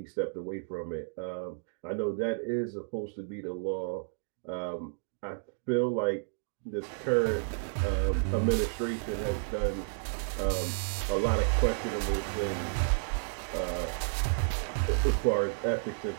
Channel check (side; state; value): left; silent; digital silence